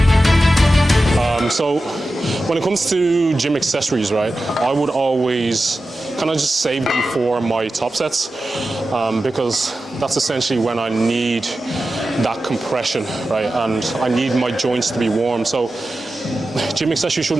So when it comes to gym accessories, right, I would always kind of just save them for my top sets, because that's essentially when I need that compression, right, and I need my joints to be warm. So gym accessories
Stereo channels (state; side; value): normal; both; correlation 0.93